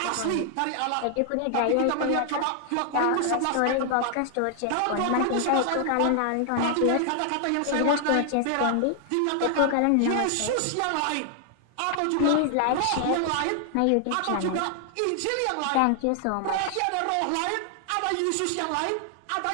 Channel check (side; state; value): both; different; correlation 0.00